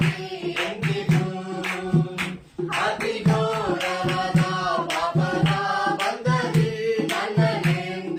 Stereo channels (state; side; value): identical; both; correlation 1.00